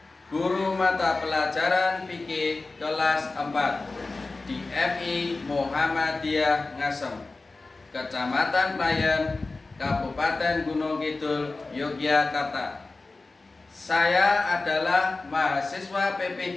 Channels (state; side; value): quieter; right; 3.5 dB